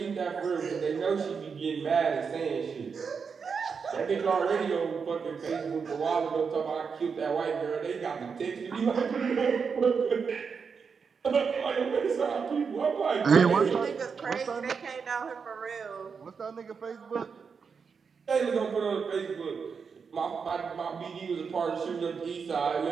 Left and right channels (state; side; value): quieter; left; 5.8 dB